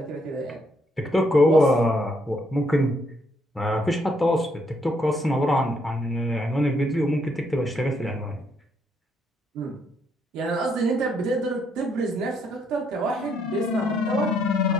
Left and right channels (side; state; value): both; normal; correlation 0.73